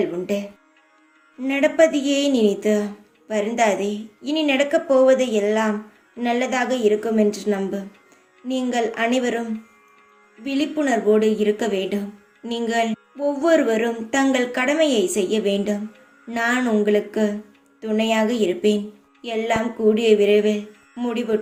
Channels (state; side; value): identical; both; correlation 1.00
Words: உண்டு. நடப்பதையே நினைத்து வருந்தாதே. இனி நடக்கப் போவது எல்லாம் நல்லதாக இருக்கும் என்று நம்பு. நீங்கள் அனைவரும் விழிப்புணர்வோடு இருக்க வேண்டும். நீங்கள் ஒவ்வொருவரும் தங்கள் கடமையை செய்ய வேண்டும். நான் உங்களுக்கு துணையாக இருப்பேன். எல்லாம் கூடிய விரைவில்